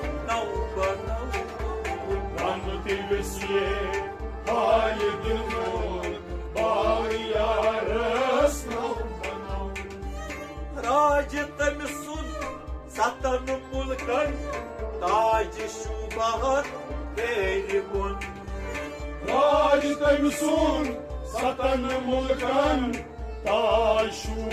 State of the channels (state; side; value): identical; both; correlation 1.00